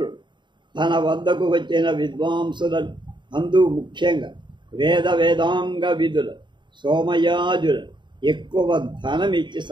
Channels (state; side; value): late; left; 0.23 ms